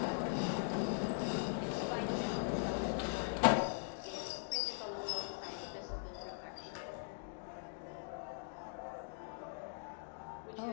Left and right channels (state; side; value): silent; right; digital silence